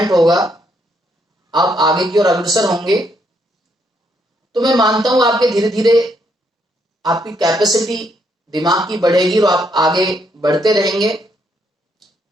होगा, आप आगे की ओर अग्रसर होंगे, तो मैं मानता हूं आपके धीरे धीरे आपकी कैपेसिटी दिमाग की बढ़ेगी और आप आगे बढ़ते रहेंगे।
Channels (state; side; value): normal; both; correlation 0.74